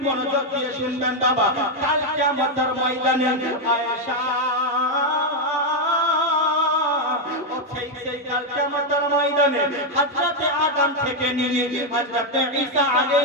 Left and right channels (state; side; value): normal; both; correlation 0.03